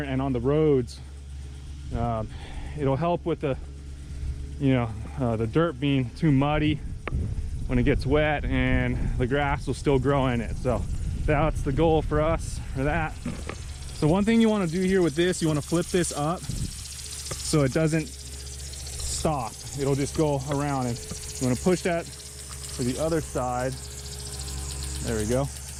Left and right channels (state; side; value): identical; both; correlation 1.00